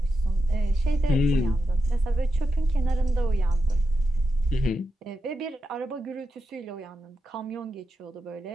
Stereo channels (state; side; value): normal; both; correlation 0.87